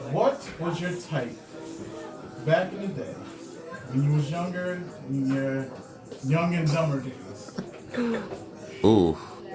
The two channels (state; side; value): identical; both; correlation 1.00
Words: what was your type back in the day when you was younger, in your young and dumber days? Ooh.